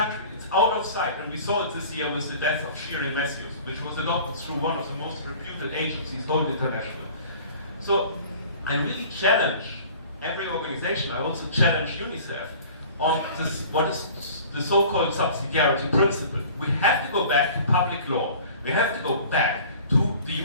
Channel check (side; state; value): both; inverted; correlation -0.45